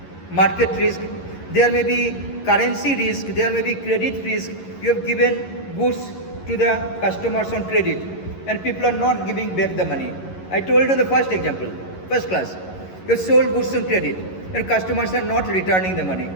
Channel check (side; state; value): right; late; 11 ms